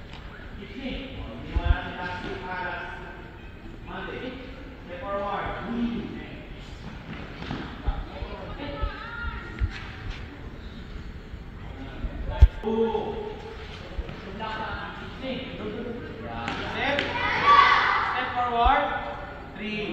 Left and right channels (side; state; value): both; identical; correlation 1.00